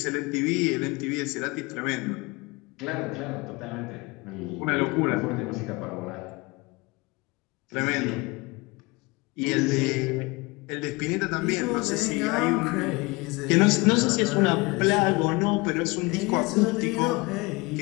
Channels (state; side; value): quieter; right; 25.0 dB